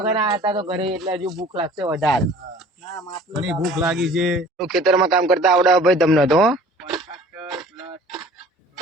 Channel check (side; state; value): both; normal; correlation 0.48